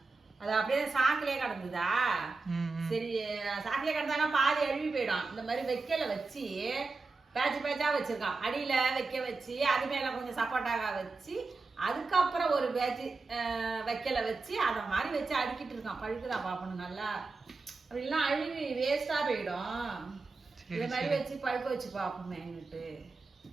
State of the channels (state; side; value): quieter; left; 3.9 dB